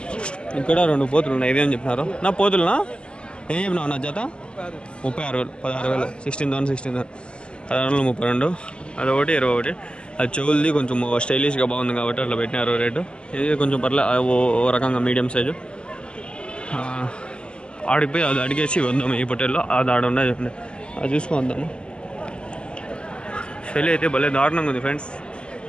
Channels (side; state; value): right; late; 0.051 ms